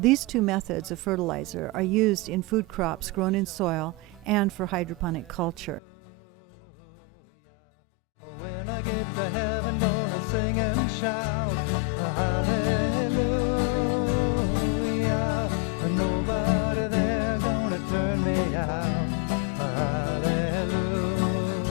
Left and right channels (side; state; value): right; drops out; at 5.8 s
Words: 2 methods of fertilizer are used in food crops grown in soil and for hydroponic culture. When I get to heaven, gonna sing and shout, hallelujah. Nobody there gonna turn me out, hallelujah.